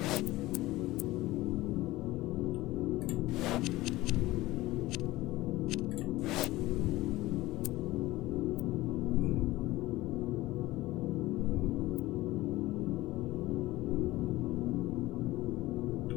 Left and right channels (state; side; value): quieter; right; 18.2 dB